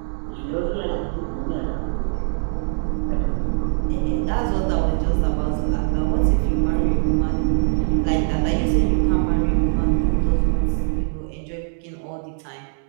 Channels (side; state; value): left; silent; digital silence